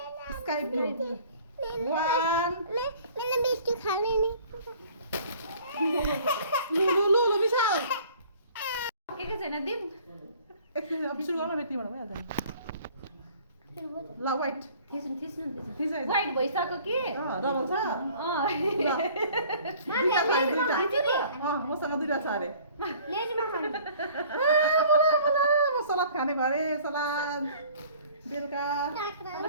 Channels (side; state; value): both; inverted; correlation -0.52